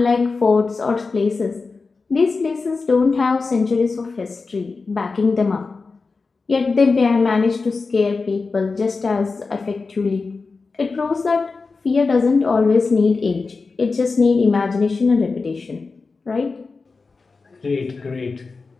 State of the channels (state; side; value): quieter; right; 4.2 dB